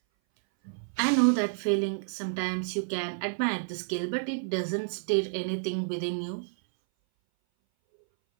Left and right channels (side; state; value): left; silent; 58 dB below the other